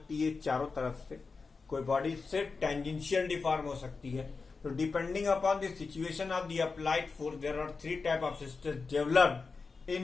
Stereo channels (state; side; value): quieter; right; 4.5 dB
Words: है चारों तरफ से, कोई बॉडी सिर्फ टेंजेंशियल डिफॉर्म हो सकती है। तो depending upon the situation of the applied force there are 3 type of stress developed